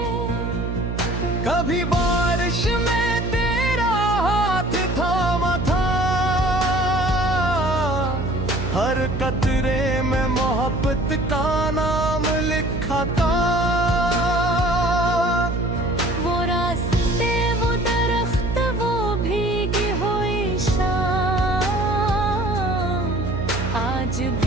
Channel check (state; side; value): noise; right; hum, 3 dB below the sound